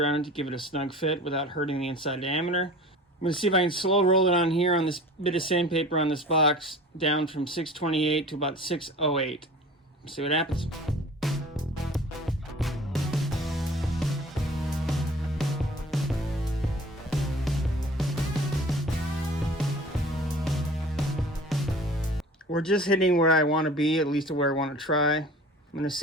it to give it a snug fit without hurting the inside diameter. I'm going to see if I can slow roll it on here on this bit of sandpaper on this box down from 628 to about 608. See what happens. We're just hitting where I want to be, at least where I want to try. I'm going to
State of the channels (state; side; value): normal; both; correlation 0.42